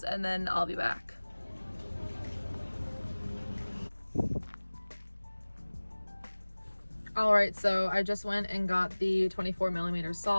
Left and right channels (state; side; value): inverted; both; correlation -1.00